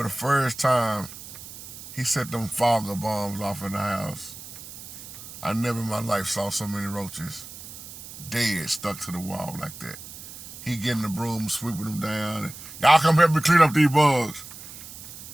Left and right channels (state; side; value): noise; right; hiss, 14 dB below the sound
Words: the first time he set them fogger bombs off in the house. I never in my life saw so many roaches dead, stuck to the wall like that. He getting the broom, sweeping them down. And, y'all come help me clean up these bugs.